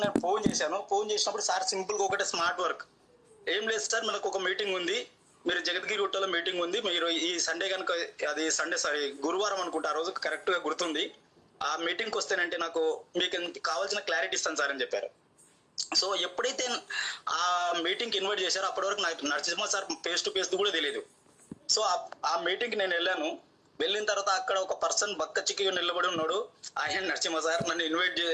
నేను ఫోన్ చేశాను. ఫోన్ చేసినప్పుడు సార్ సింపుల్గా ఒకటే స్మార్ట్ వర్క్, ఏం లేదు సార్ మనకు ఒక మీటింగ్ ఉంది, మీరు జగద్గిరి గుట్టలో మీటింగ్ ఉంది, మీరు ఈ సండే కనుక, అది సండే సారీ గురువారం అనుకుంటా, ఆ రోజు కరెక్ట్గా గుర్తుంది, ఆ మీటింగ్కి వస్తేనంటే నాకు మీకు కావాల్సిన క్లారిటీ ఇస్తాను సార్ అని చెప్పారు. సో ఎప్పుడైతే ఆ మీటింగ్కి ఇన్వైట్ చేశారో అప్పటి వరకు నాకు Narasimha sir face to face కూడా తెలియదు. సో ఆ మీటింగ్కి నేను వెళ్ళాను. వెళ్ళిన తర్వాత అక్కడ ఒక పర్సన్ బక్క చిక్కిగా నిలబడి ఉన్నాడు, ఆయన నరసింహ సార్ నన్ను ఇన్వైట్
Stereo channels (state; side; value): identical; both; correlation 1.00